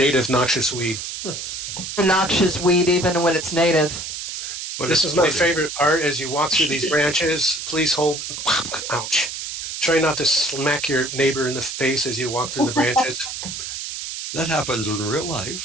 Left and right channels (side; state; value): right; noise; hiss, 7 dB below the sound